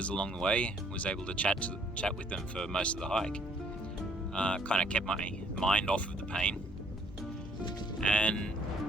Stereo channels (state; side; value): normal; both; correlation 0.63